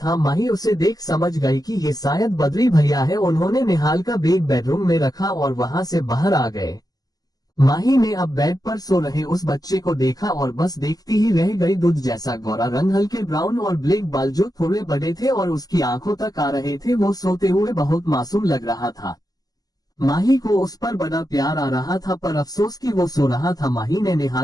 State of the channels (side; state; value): right; late; 0.18 ms